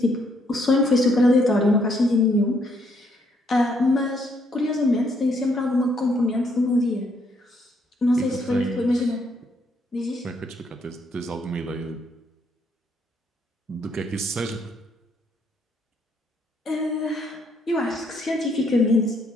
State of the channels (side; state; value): both; normal; correlation 0.71